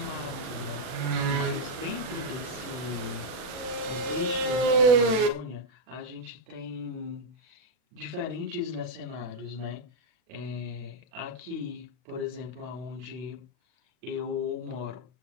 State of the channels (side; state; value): left; late; 40 ms